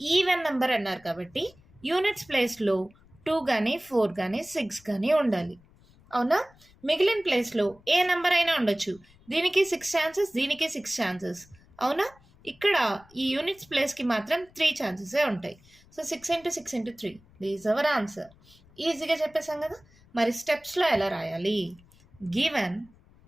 ఈవెన్ నెంబర్ అన్నారు కాబట్టి యూనిట్స్ ప్లేస్లో 2 కానీ 4 కానీ 6 కానీ ఉండాలి. అవునా? మిగిలిన ప్లేస్లో ఏ నెంబర్ అయినా ఉండొచ్చు. దీనికి 6 ఛాన్సెస్, దీనికి 6 ఛాన్సెస్. అవునా? ఇక్కడ ఈ యూనిట్స్ ప్లేస్కి మాత్రం 3 ఛాన్సెసే ఉంటాయి. So 6 into 6 into 3 these our answer. ఈజీగా చెప్పేసాం కదా. మరి స్టెప్స్లో ఎలా రాయాలి? Given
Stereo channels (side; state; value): left; noise; rumble, 28 dB below the sound